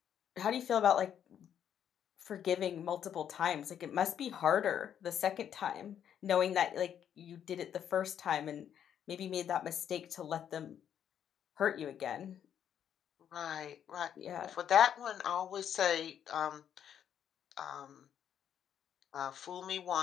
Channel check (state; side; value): quieter; right; 9.2 dB